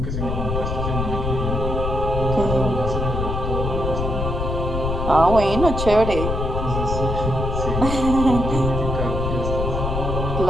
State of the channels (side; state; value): left; noise; rumble, 2 dB below the sound